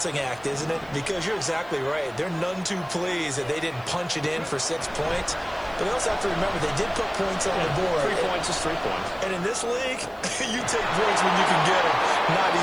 act, isn't it? Because you're exactly right. They're none too pleased that they didn't punch it in for 6 points. But they also have to remember they did put points on the board. 3 points is 3 points. And in this league, you take points when you can get them. Not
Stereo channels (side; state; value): right; noise; hiss, 29 dB below the sound